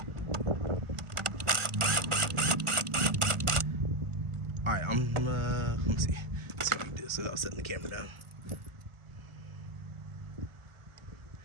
All right, let me see what I can do this without setting the camera down.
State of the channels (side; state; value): left; late; 1.4 ms